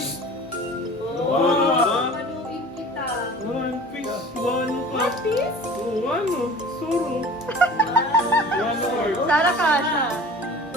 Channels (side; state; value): both; normal; correlation 0.42